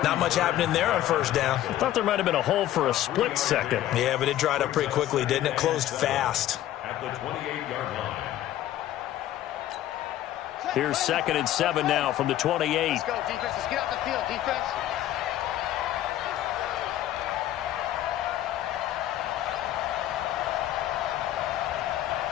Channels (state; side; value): quieter; right; 13.1 dB